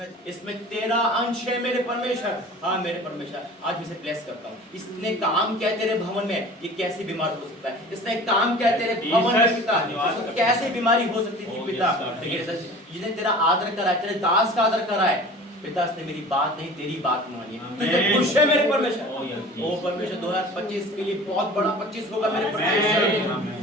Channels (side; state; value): both; normal; correlation 0.41